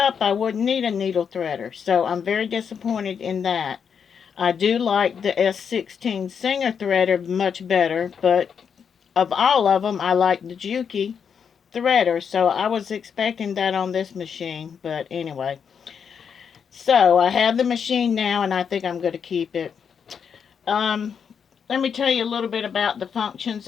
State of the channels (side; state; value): right; quieter; 7.0 dB